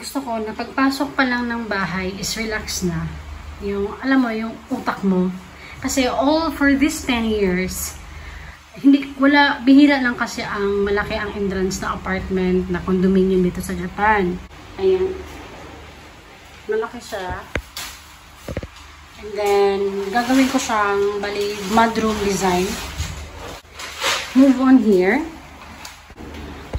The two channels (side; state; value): both; identical; correlation 1.00